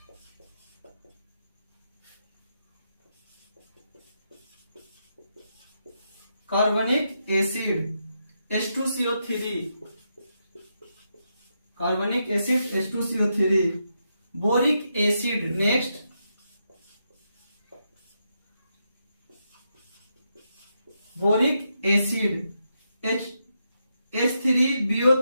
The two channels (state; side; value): inverted; both; correlation -0.83